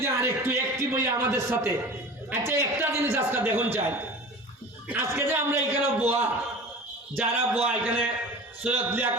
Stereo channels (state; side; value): normal; both; correlation 0.37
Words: আরেকটু অ্যাক্টিভ হই আমাদের সাথে। আচ্ছা, একটা জিনিস আজকে দেখুন চাই, আজকে যে আমরা এখানে বোয়া, যারা বোয়া এখানে সৈয়দ